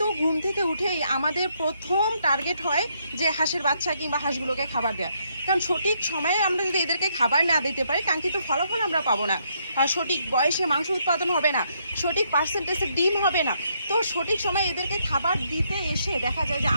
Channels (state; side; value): inverted; both; correlation -0.74